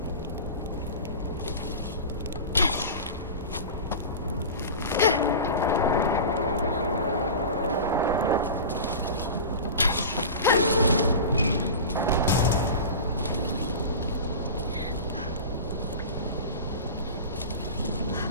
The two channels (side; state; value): both; inverted; correlation -0.31